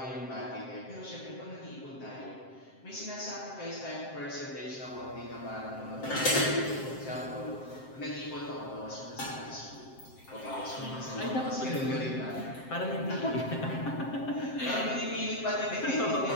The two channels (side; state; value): right; late; 7.6 ms